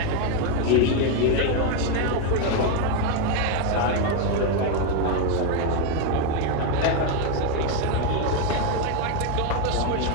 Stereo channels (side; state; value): both; different; correlation 0.01